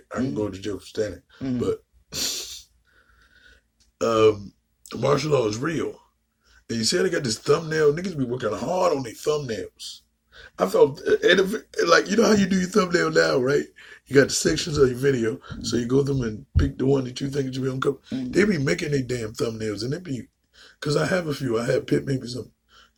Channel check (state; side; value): identical; both; correlation 1.00